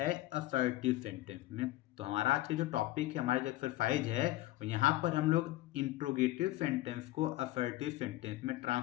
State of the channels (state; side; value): quieter; right; 17.0 dB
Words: असर्टिव सेंटेंस में। तो हमारा आज के जो टॉपिक है, हमारा जो एक्सरसाइज है, यहाँ पर हम लोग इंट्रोगेटिव सेंटेंस को असर्टिव सेंटेंस में